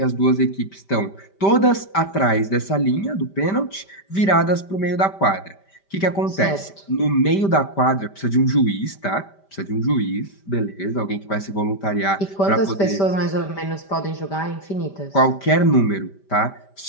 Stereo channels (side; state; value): right; late; 5.1 ms